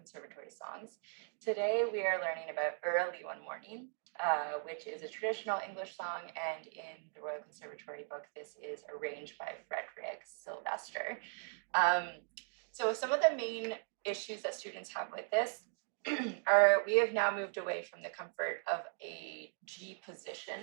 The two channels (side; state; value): left; silent; 52 dB below the other